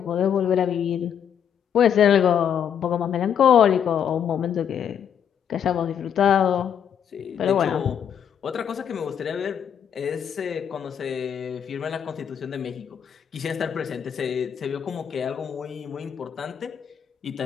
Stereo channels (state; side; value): quieter; right; 8.4 dB